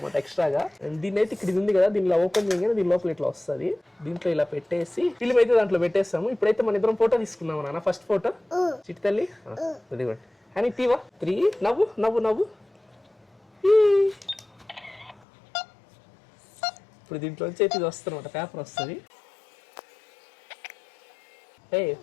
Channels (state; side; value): drops out; right; at 15.2 s